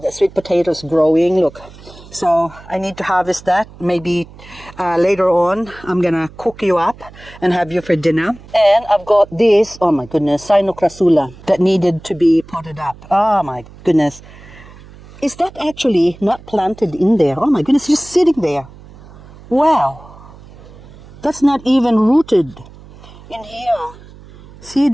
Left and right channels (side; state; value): right; noise; hum, 20 dB below the sound